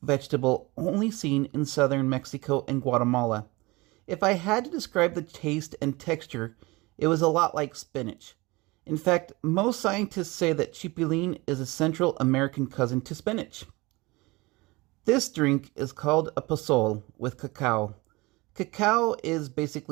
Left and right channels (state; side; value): quieter; left; 23.2 dB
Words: vegetable only seen in southern Mexico and Guatemala. If I had to describe the taste and texture, it was a lot like spinach. In fact, most scientists say that chipilín is a Central American cousin to spinach. This drink is called a pozol with cacao. Cacao is